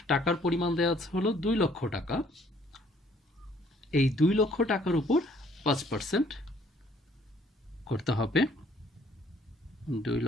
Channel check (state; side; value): normal; both; correlation 0.62